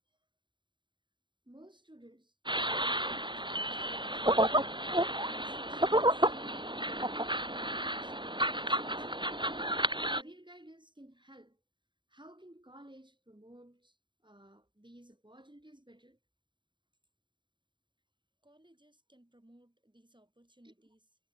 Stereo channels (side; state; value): left; late; 0.23 ms